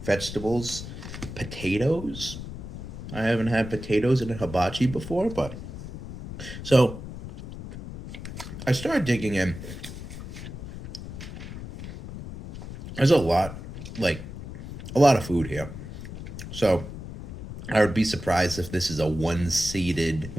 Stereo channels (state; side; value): noise; left; rumble, 10 dB below the sound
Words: vegetables, potatoes. I haven't had potatoes in a hibachi before, but so I started digging in. There's a lot, like a lot of food here. So I would be surprised if this is a one